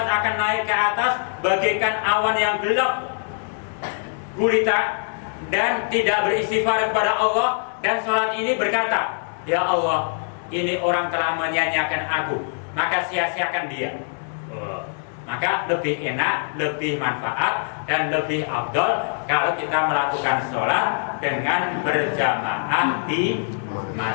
akan naik ke atas bagaikan awan yang gelap gulita dan tidak beristighfar kepada Allah. Dan sholat ini berkata, ya Allah, ini orang telah menyanyiakan aku, maka sia-siakan dia. Maka lebih enak, lebih manfaat, dan lebih afdol kalau kita melakukan sholat dengan berjamaah di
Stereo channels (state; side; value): silent; right; 63 dB below the other